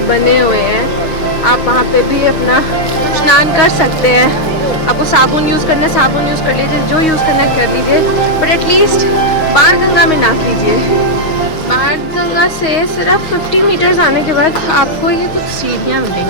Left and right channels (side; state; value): right; late; 6.3 ms